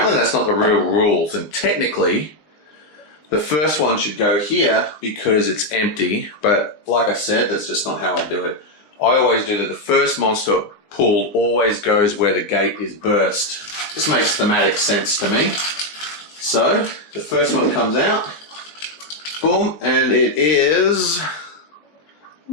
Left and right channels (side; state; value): right; late; 20 ms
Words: that's not the real rules, and technically the first one should go here because it's empty, but like I said, that's just not how I do it. I always do that the first monster pulled always goes where the gate is burst. This makes thematic sense to me. So, the first one comes out, boom, and it is...